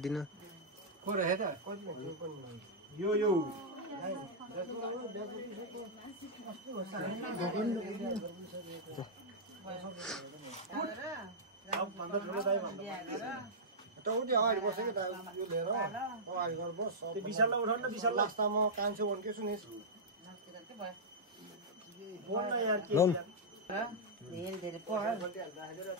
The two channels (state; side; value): normal; both; correlation -0.10